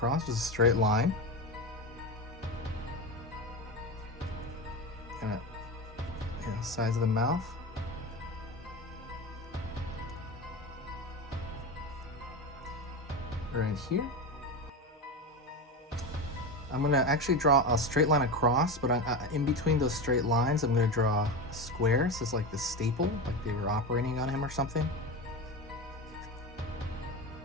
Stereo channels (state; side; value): normal; both; correlation 0.21